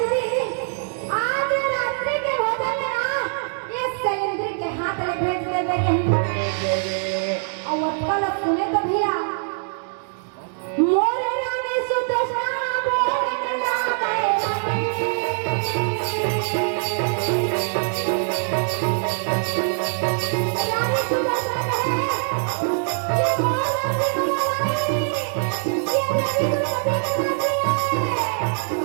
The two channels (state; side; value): silent; left; 63 dB below the other